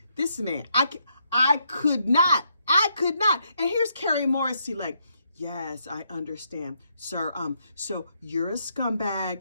This man, I could not. And here's Carrie Morrissey like, yes, I understand, sir. So you're a scumbag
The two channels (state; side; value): inverted; both; correlation -0.76